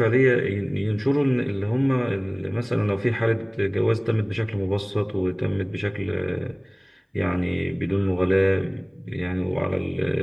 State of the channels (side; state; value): both; identical; correlation 1.00